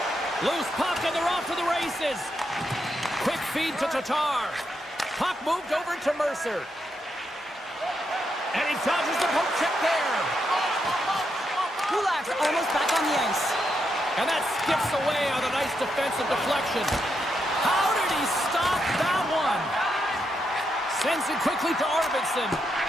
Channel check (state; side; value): normal; both; correlation 0.82